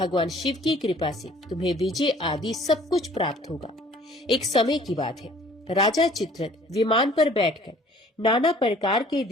शिव की कृपा से तुम्हें विजय आदि सब कुछ प्राप्त होगा। एक समय की बात है, राजा चित्ररथ विमान पर बैठकर नाना प्रकार के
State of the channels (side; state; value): both; normal; correlation 0.53